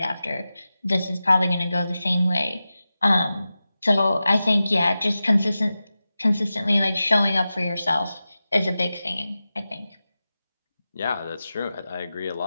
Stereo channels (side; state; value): both; inverted; correlation -0.94